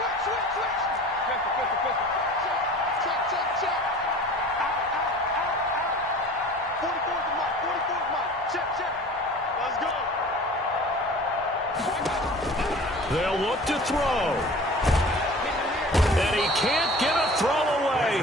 They'll look to throw. And he can't get a throw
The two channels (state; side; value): normal; both; correlation 0.42